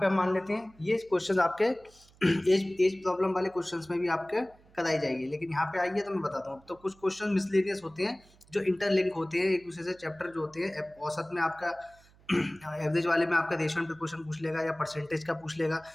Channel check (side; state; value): right; noise; hum, 28 dB below the sound